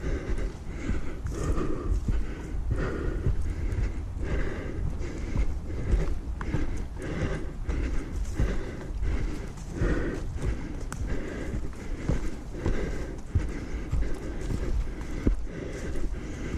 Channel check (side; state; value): both; identical; correlation 1.00